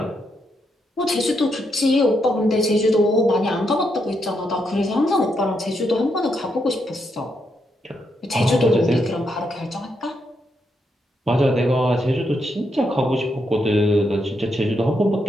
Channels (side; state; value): both; normal; correlation 0.80